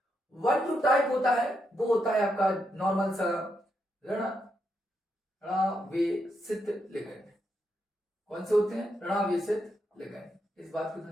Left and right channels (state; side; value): normal; both; correlation 0.81